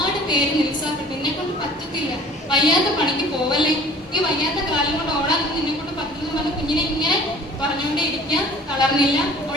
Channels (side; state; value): both; normal; correlation 0.49